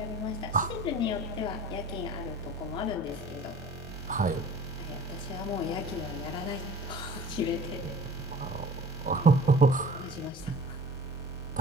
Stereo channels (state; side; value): normal; both; correlation 0.44